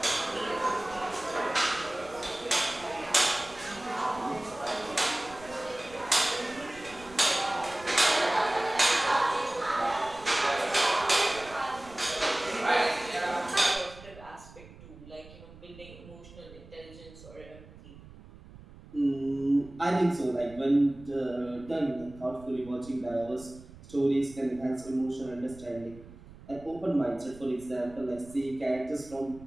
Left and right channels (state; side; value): noise; right; rumble, 19 dB below the sound